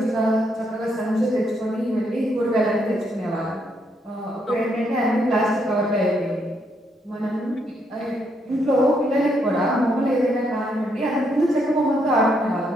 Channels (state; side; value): normal; both; correlation 0.75